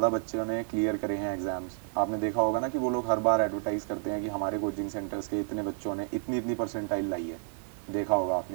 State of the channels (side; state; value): left; silent; digital silence